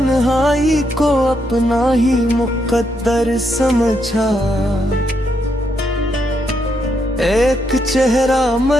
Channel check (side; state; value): both; normal; correlation 0.78